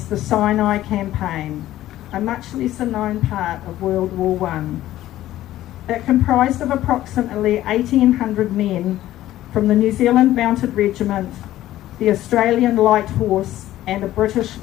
the Sinai Campaign, a much lesser known part of World War I. It comprised of approximately 1,800 men from the New Zealand Mounted Regiment, the Australian Light Horse, and a British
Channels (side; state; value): right; quieter; 14.2 dB